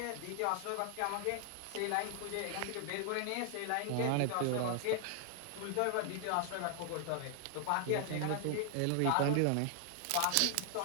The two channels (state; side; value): different; both; correlation 0.00